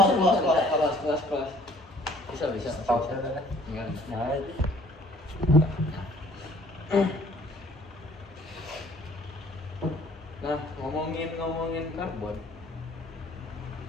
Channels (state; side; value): normal; both; correlation 0.57